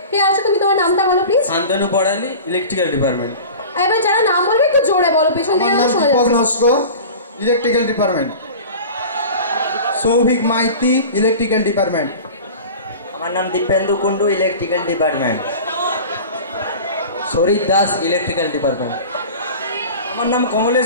কে আছো? তুমি তোমার নামটা বলো please. Santanu Porali, electrical department. এবার যারা নাম বলবে একটু জোরে বলো, পেছন থেকে শোনা যাচ্ছে। Electrical department. Souvik Maiti, electrical department. আমার নাম দীপেন্দু কুন্ডু, ইলেকট্রিক্যাল ডিপার্টমেন্ট। শরীর দাস, ইলেকট্রিক্যাল ডিপার্টমেন্ট। আমার নাম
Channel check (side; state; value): both; inverted; correlation -0.36